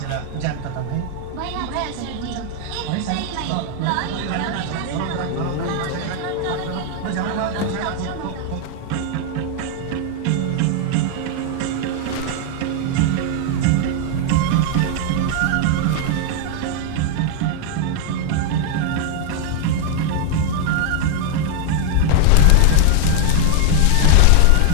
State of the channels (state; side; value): different; both; correlation 0.00